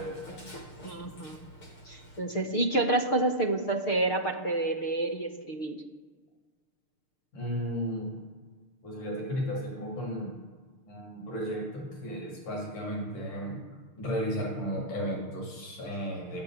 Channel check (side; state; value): right; late; 6.6 ms